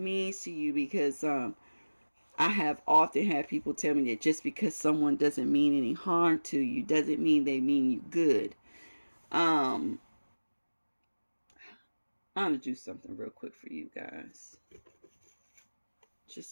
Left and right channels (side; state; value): both; inverted; correlation -1.00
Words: to you, because I have often had people tell me that just because someone doesn't mean any harm to you doesn't mean they mean you good. I'm going to do something real quick for you guys.